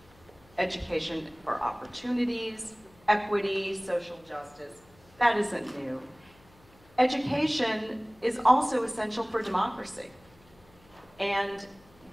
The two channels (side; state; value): left; noise; hum, 28 dB below the sound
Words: Education for opportunities, equity, social justice. That isn't new. Education is also essential for democracy and